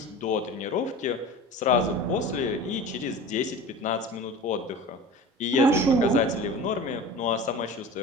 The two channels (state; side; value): normal; both; correlation 0.36